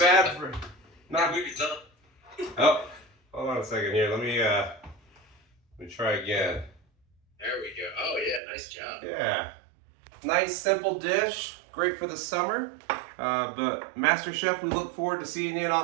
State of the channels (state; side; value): drops out; left; at 8.4 s